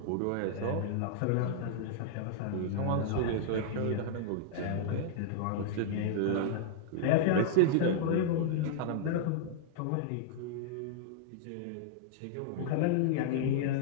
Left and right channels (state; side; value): different; both; correlation -0.01